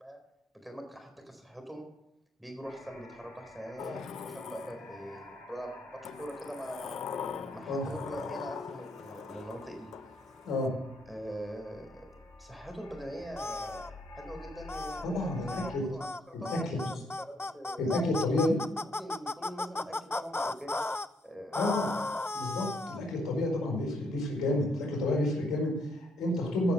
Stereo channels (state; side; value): normal; both; correlation 0.71